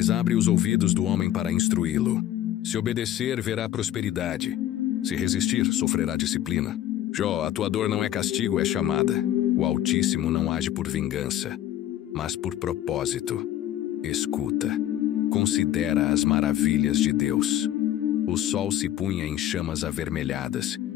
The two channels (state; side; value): quieter; right; 12.4 dB